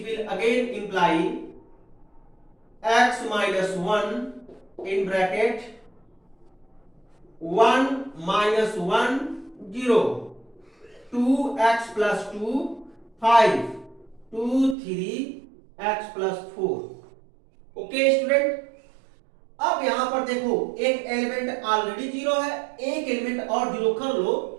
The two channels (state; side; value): drops out; left; at 14.8 s